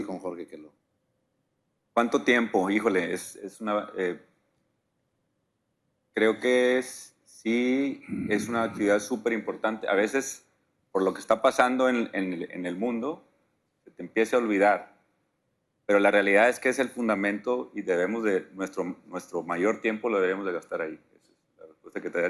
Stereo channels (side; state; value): both; identical; correlation 1.00